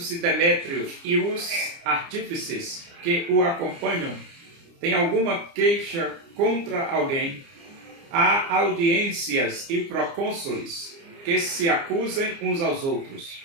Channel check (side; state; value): left; late; 29 ms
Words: Demétrio e os artífices que o acompanham têm alguma queixa contra alguém, há audiências e procônsules que se acusem uns aos outros.